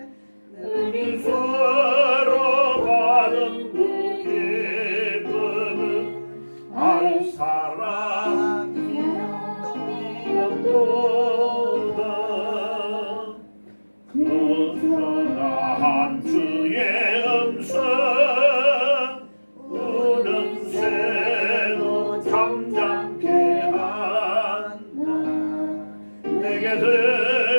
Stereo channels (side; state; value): both; inverted; correlation -1.00